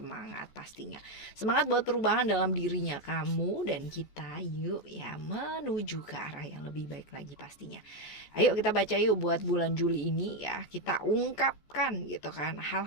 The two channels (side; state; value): right; late; 14 ms